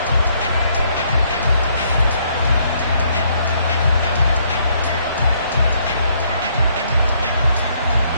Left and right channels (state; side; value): inverted; both; correlation -0.69